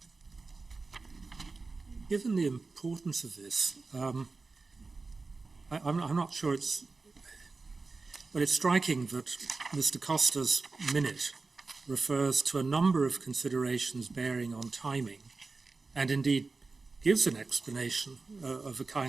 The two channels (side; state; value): left; quieter; 3.9 dB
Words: Given the importance of this, I'm not sure it's, but it's striking that Mr. Costa's minute refers to a number of considerations bearing on timing, and indeed gives an explanation of a